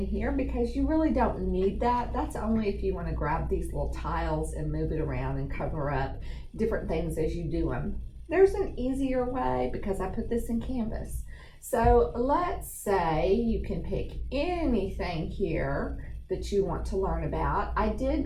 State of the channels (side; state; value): both; identical; correlation 1.00